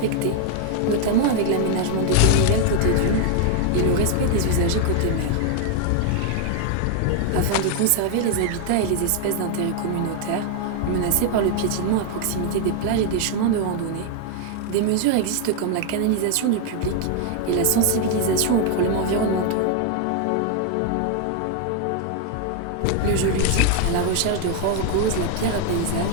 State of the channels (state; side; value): different; both; correlation 0.00